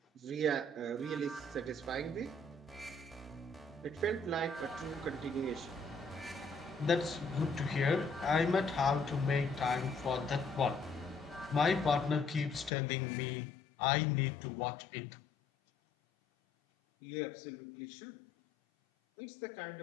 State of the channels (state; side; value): drops out; right; at 12.7 s